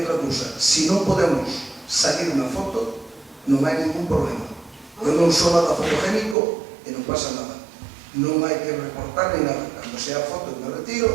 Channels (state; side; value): drops out; left; at 6.4 s